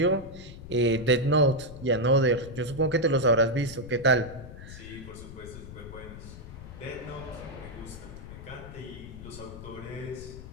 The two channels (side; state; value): left; noise; rumble, 13 dB below the sound